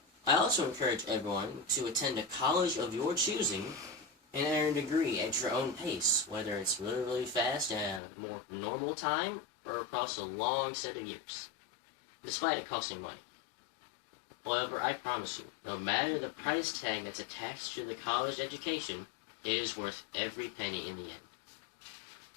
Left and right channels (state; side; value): drops out; right; at 8.0 s